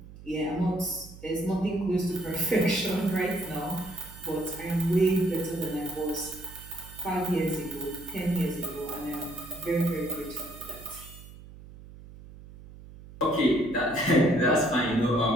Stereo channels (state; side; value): noise; right; hum, 17 dB below the sound